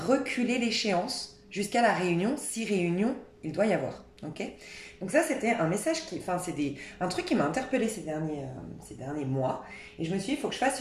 reculer l'échéance jusqu'à la réunion, si réunion il doit y avoir. Ok ? Donc ça, c'était un message un truc qui m'a interpellée ces derniers mois. Et je me suis dit, il faut que je fasse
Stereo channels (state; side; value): identical; both; correlation 1.00